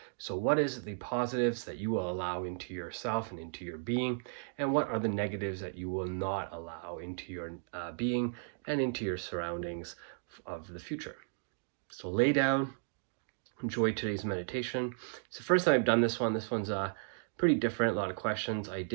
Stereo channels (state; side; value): silent; left; digital silence